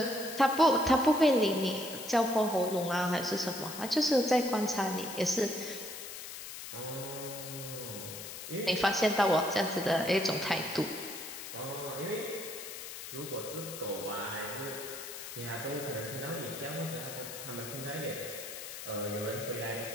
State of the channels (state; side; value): noise; left; hiss, 10 dB below the sound